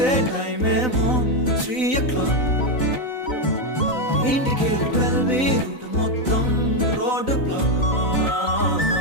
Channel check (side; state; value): right; late; 3.9 ms